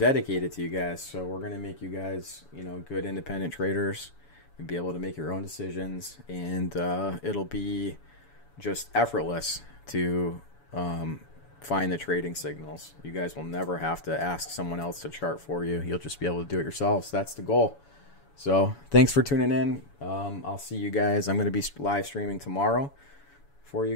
to you guys. So we're gonna make you guys, you know, good independent traders and be able to make your own decisions, and it'll be just effortless to find the trading signals. You guys will never have to ask someone else to chart for you. You'll just be able to do it yourselves. That's the goal. So thanks for tuning in. I'll see you guys. I'm going to be live streaming tomorrow for you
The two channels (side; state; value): right; late; 7.1 ms